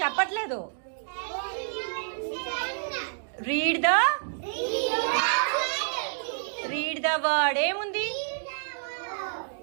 చెప్పట్లేదు. Read the word. ఏముంది?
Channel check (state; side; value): silent; left; digital silence